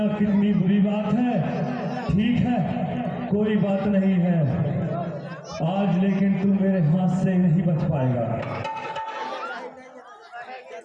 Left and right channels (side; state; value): both; identical; correlation 1.00